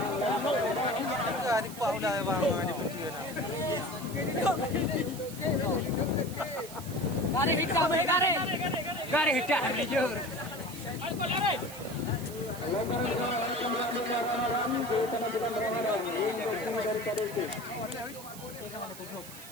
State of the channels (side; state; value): right; noise; hiss, 14 dB below the sound